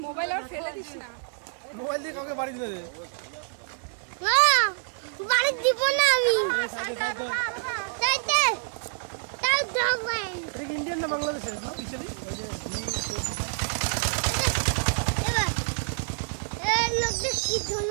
Mobile আর ফেলে this না। মোবাইল দিয়ে কাউকে বাড়ি দিতে দে। না, বাড়ি দিব না আমি। সাইডে সাইডে। সাইডে। তাও যাবেন। ঠিক ইন্ডিয়ান না বাংলাদেশের? এবার এই লোক কি জন্য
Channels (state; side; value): silent; left; digital silence